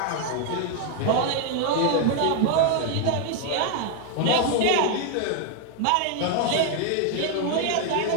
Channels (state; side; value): different; both; correlation 0.00